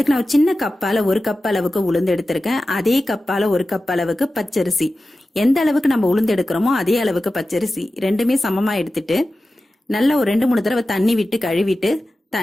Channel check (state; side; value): normal; both; correlation 0.94